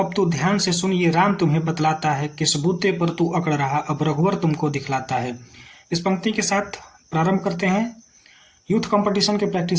तू ध्यान से सुन, ये राम तुम्हें बतलाता है, किस बूते पर तू अकड़ रहा, अब रघुवर तुमको दिखलाता है। इस पंक्ति के साथ प्रारंभ करते हैं यूथ कंपटीशन के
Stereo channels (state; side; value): identical; both; correlation 1.00